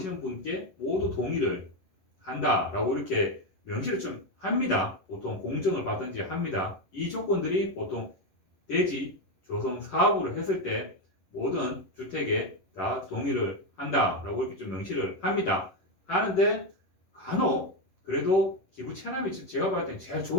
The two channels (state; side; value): late; right; 11 ms